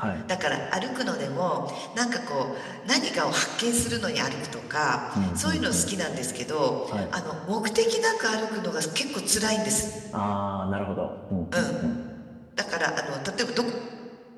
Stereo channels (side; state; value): both; identical; correlation 1.00